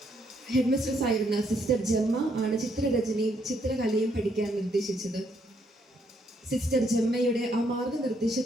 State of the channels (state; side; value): normal; both; correlation 0.72